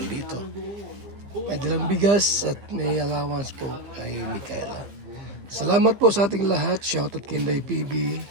dito. May dalang bigas at may allowance po kay Micaela. Salamat po sa ating lahat. Shoutout kay Inday PB.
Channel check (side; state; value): left; late; 15 ms